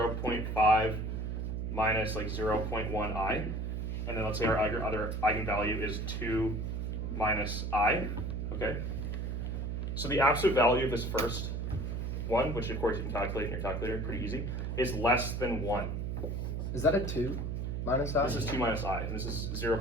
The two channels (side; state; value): right; noise; hum, 2 dB below the sound